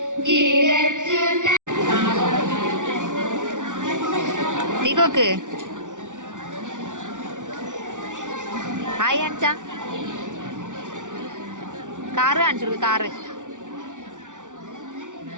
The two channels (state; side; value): late; left; 0.87 ms